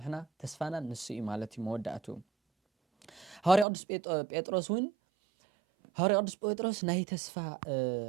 ተስፋና ንሱ እዩ ማለት እዩ መወዳእቱ ሐዋርያ ቅዱስ ጴጥሮስ እውን ሐዋርያ ቅዱስ ጴጥሮስ ናይ ተስፋ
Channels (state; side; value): drops out; left; at 3.7 s